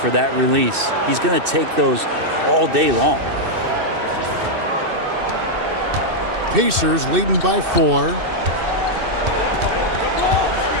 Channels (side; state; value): left; late; 2.6 ms